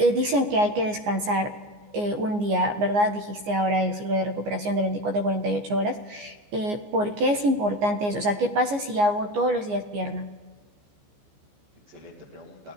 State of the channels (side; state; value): left; late; 14 ms